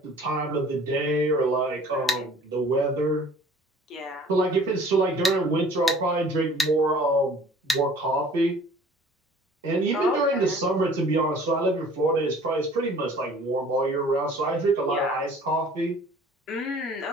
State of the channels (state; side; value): normal; both; correlation 0.50